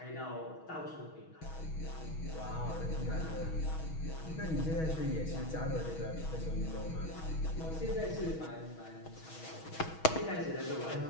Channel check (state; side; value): late; right; 6.3 ms